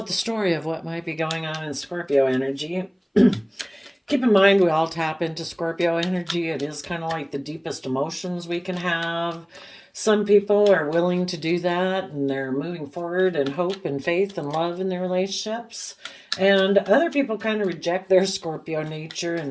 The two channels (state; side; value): identical; both; correlation 1.00